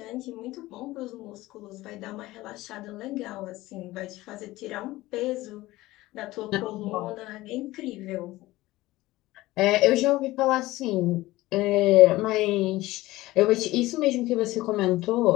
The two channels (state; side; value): quieter; right; 18.1 dB